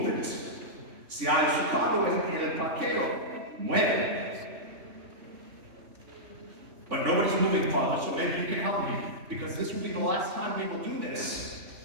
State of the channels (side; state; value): left; late; 3.4 ms